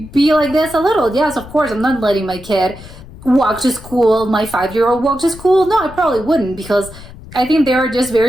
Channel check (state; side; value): noise; left; rumble, 17 dB below the sound